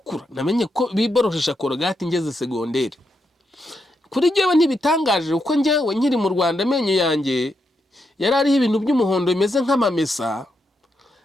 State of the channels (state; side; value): normal; both; correlation 0.82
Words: namenye ko biboroshesha korogate ngeze segonderi. Kuri jyewe ntibitangaje uko njyewe nkiri mu Rwanda amenyo yanjye yari ariho ibintu by'umuhondo bimeze nk'amamesa.